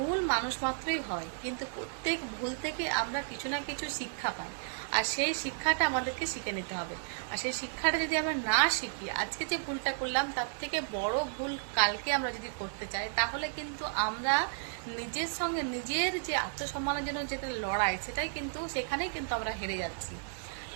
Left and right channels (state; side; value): silent; left; digital silence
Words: মানুষ মাত্রই হয়, কিন্তু প্রত্যেক ভুল থেকে আমরা কিছু না কিছু শিক্ষা পাই। আর সেই শিক্ষাটা আমাদেরকে শিখে নিতে হবে। আর সেই শিক্ষাটা যদি আমরা না শিখি, আজকে যে ভুলটা করলাম তার থেকে বড় ভুল কালকে আমরা যদি করতে চাই, তাহলে কিন্তু আমরা নিজের সঙ্গে নিজের যে আত্মসম্মানের জন্য যেটা লড়াই, সেটাই কিন্তু সেখানেই কিন্তু আমরা হেরে যাচ্ছি।